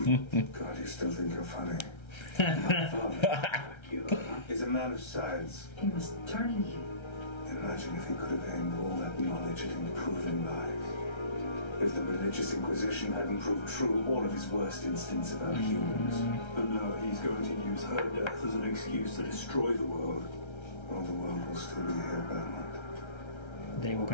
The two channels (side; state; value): right; late; 1.3 ms